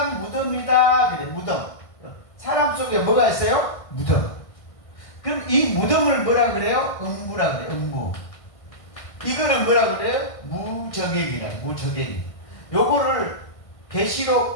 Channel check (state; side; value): late; right; 1.5 ms